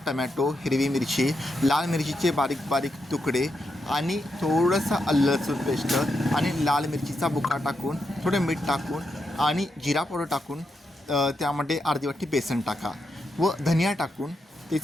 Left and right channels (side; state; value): both; normal; correlation 0.84